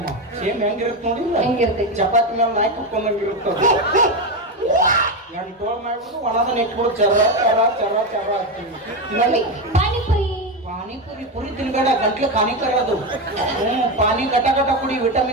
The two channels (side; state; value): both; normal; correlation 0.12